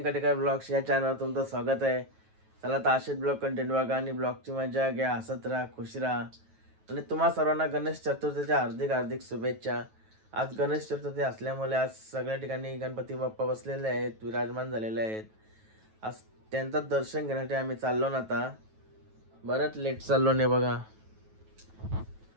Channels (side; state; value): left; late; 9.2 ms